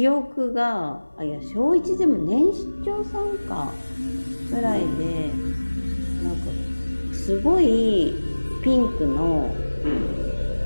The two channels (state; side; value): inverted; both; correlation -1.00